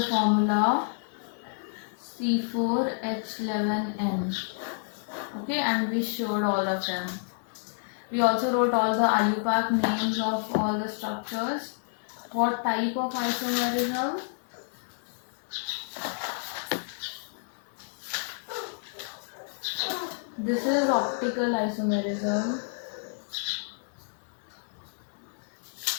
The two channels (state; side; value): silent; right; digital silence